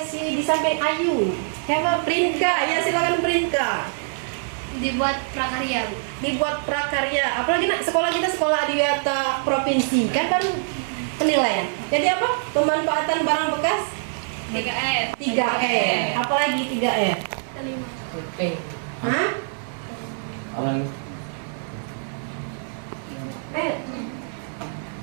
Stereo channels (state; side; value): silent; left; 63 dB below the other